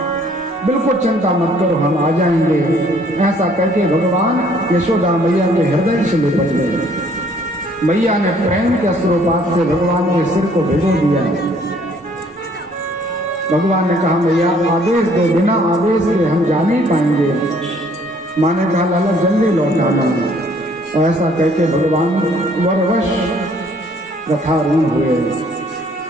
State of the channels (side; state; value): both; normal; correlation 0.61